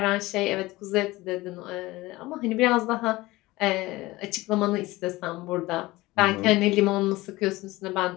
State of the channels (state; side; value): quieter; right; 19.6 dB